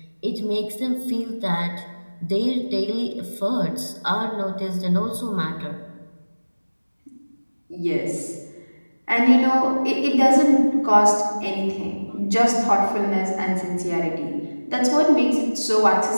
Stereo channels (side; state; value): both; inverted; correlation -1.00